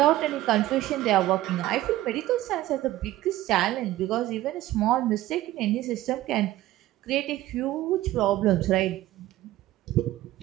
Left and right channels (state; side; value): quieter; left; 15.6 dB